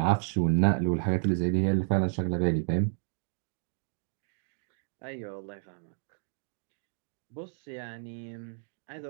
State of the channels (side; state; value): left; silent; digital silence